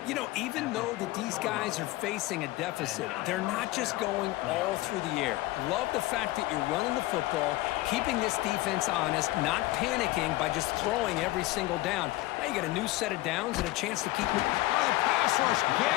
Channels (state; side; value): quieter; right; 18.6 dB